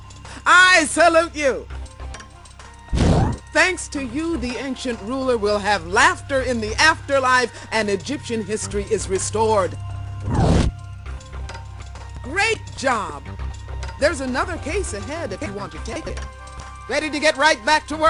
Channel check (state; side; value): identical; both; correlation 1.00